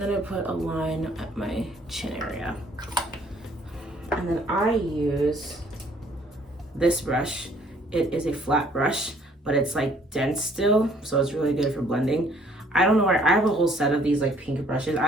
I put a line at my chin area. And then I use this brush. It is a flat brush, but it's like dense still, so it's really good for blending. I don't know where, I have a whole set of these like pink brushes.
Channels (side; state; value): both; normal; correlation 0.60